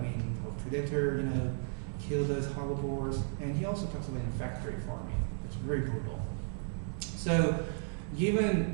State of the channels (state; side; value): silent; left; digital silence